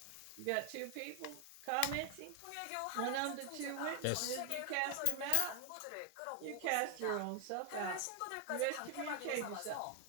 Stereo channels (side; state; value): both; different; correlation 0.00